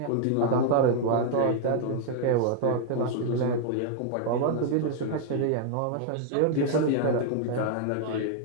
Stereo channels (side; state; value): both; different; correlation 0.00